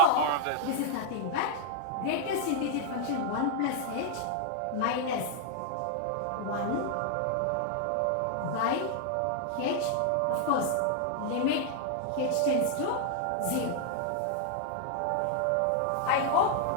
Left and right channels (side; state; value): both; different; correlation 0.00